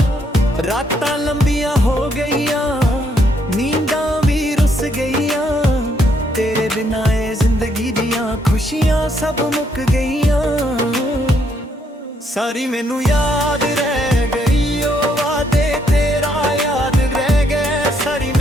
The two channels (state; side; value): normal; both; correlation 0.73